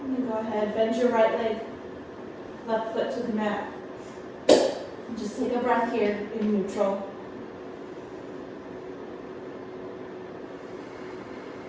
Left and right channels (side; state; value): both; identical; correlation 1.00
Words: And then go ahead, bend your right leg, left foot to the mat. And just take a breath here in neutral.